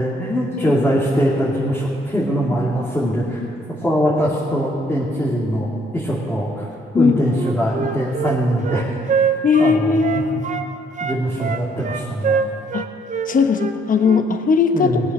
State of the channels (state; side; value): normal; both; correlation 0.67